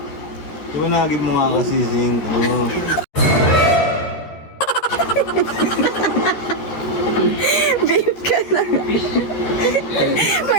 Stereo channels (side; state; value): right; late; 13 ms